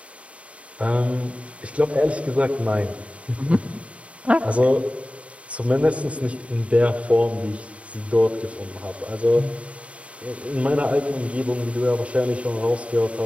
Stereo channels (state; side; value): late; left; 0.064 ms